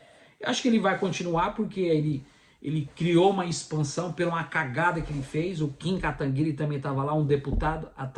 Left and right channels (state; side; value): identical; both; correlation 1.00